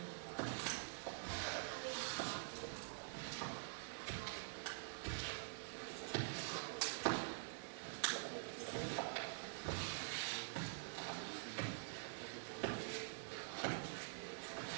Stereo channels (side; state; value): left; silent; digital silence